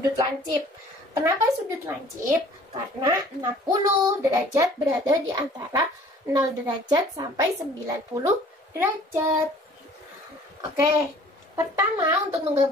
lancip. Kenapa sudut lancip? Karena 60 derajat berada di antara 0 derajat sampai 90 derajat. Oke, pertama untuk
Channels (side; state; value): both; normal; correlation 0.52